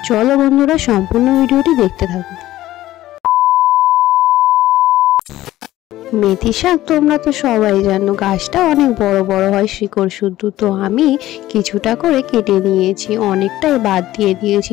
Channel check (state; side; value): quieter; right; 15.1 dB